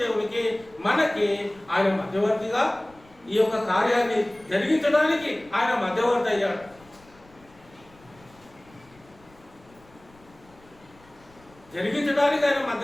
దేవునికి మనకి ఆయన మధ్యవర్తిగా ఈ యొక్క కార్యాన్ని జరిగించడానికి ఆయన మధ్యవర్తి అయ్యాడు. జరిగించడానికి ఆయన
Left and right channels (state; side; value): noise; left; rumble, 27 dB below the sound